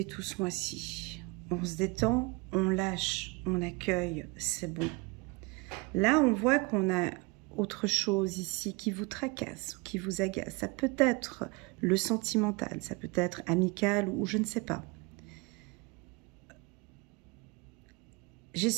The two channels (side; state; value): left; quieter; 27.9 dB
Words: tout ce mois-ci. On se détend, on lâche, on accueille, c'est bon. Là, on voit qu'on a autre chose ici qui vous tracasse, qui vous agace. Ça peut être le sentimental, ça peut être amical ou je ne sais pas. J'ai